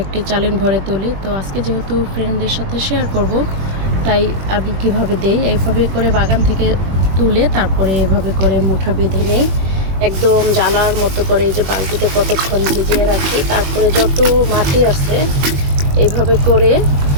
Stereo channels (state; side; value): late; left; 21 ms